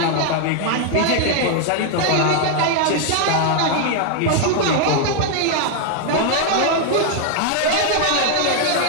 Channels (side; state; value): both; different; correlation 0.00